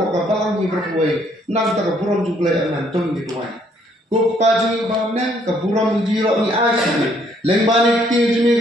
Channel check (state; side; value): normal; both; correlation 0.67